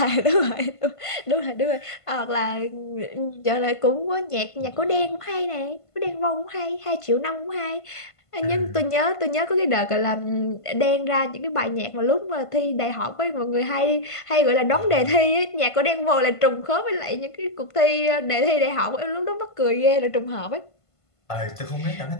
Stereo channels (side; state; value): right; late; 1.5 ms